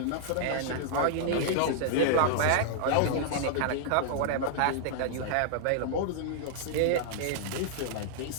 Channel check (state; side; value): different; both; correlation -0.01